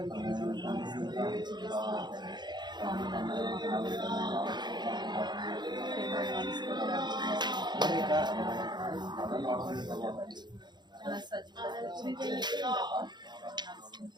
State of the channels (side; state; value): left; late; 0.21 ms